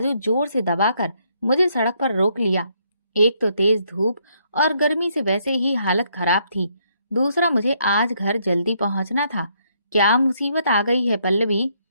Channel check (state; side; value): inverted; both; correlation -0.72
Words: जोर से दबाकर मुझे सड़क पर रोक लिया। एक तो तेज धूप और गर्मी से वैसे ही हालत खराब थी, दूसरा मुझे आज घर जल्दी पहुंचना था। क्या मुसीबत आ गई है पल्लवी?